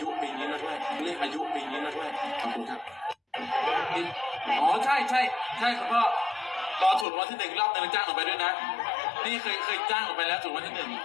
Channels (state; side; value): drops out; right; at 7.1 s